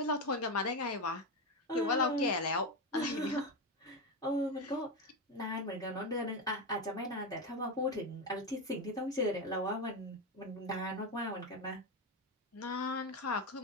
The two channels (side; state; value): both; normal; correlation 0.12